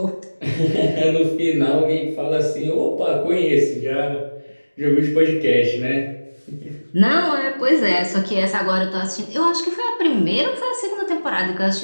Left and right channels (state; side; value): inverted; both; correlation -1.00